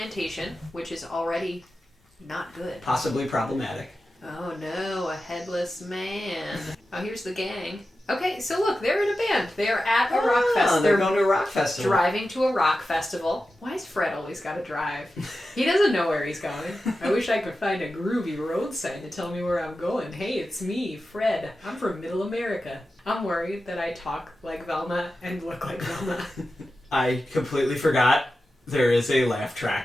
which is already... not good. Possibly problematic. Oh no, a headless man. Oh, here's the gang. Okay, so look, they're in a band. They're at a rock festival. They're going to a rock festival. Driving to a rock festival. Why has Fred always got to drive? He doesn't know where he's going. I wish I could find a groovy road sign to tell me where I'm going. Hey, it's me, Fred. I'm from Middle America. I'm worried that I talk like Velma and look like Velma. I completely forgot there is a laugh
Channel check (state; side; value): normal; both; correlation 0.92